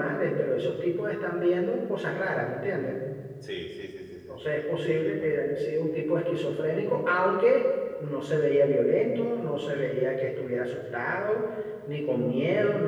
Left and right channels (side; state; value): both; identical; correlation 1.00